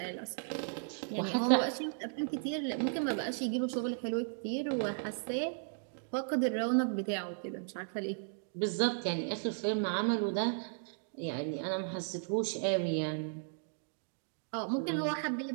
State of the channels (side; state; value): left; silent; digital silence